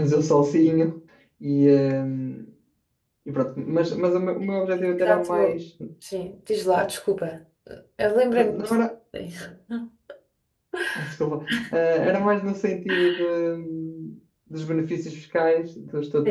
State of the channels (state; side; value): identical; both; correlation 1.00